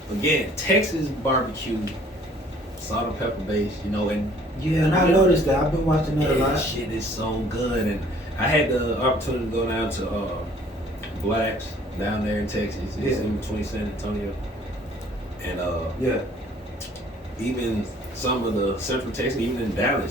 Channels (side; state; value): both; normal; correlation 0.56